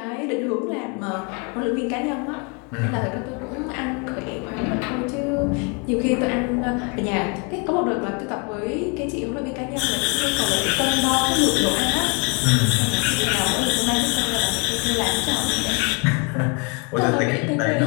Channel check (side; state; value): right; quieter; 34.1 dB